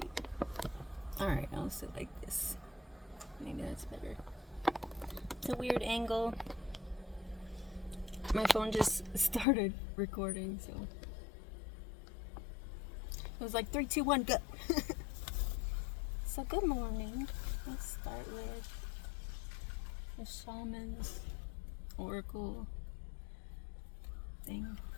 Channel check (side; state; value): right; drops out; at 9.5 s